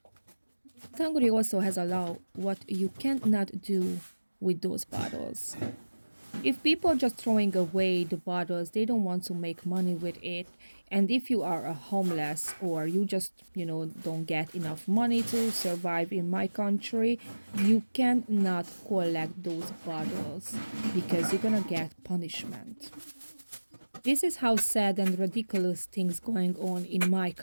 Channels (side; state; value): both; inverted; correlation -1.00